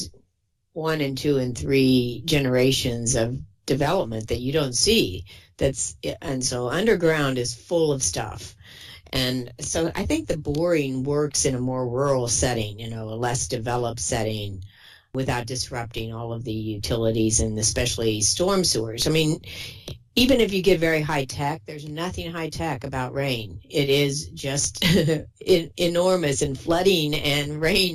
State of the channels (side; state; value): both; identical; correlation 1.00